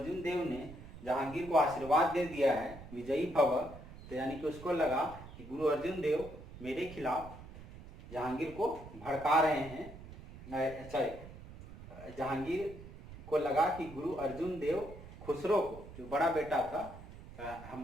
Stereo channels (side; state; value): right; noise; rumble, 15 dB below the sound